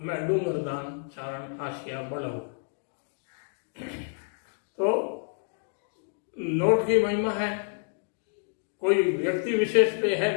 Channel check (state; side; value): silent; right; 59 dB below the other